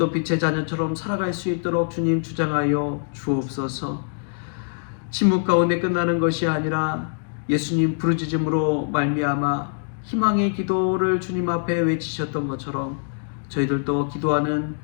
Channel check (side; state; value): right; silent; digital silence